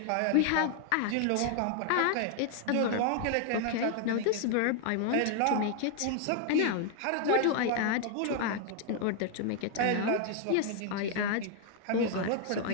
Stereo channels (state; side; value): different; both; correlation 0.00